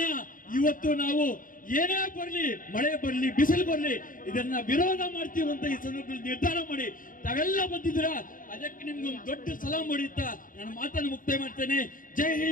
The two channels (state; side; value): late; right; 0.40 ms